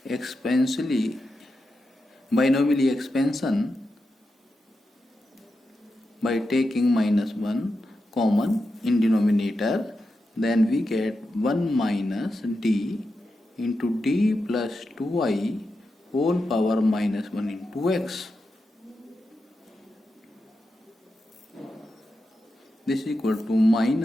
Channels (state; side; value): normal; both; correlation 0.89